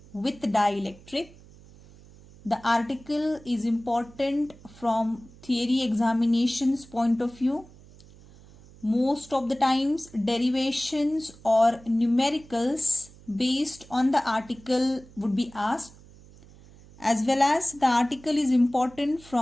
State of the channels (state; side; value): noise; right; hum, 23 dB below the sound